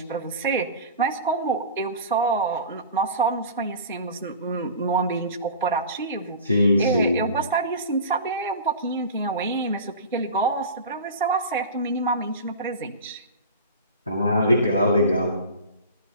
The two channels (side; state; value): both; inverted; correlation -0.34